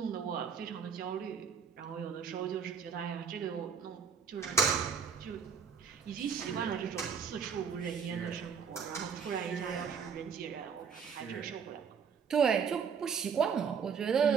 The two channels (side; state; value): left; quieter; 6.6 dB